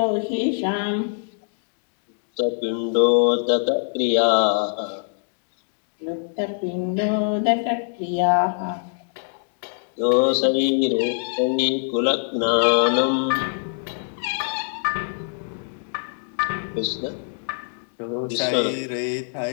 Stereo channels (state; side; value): silent; right; digital silence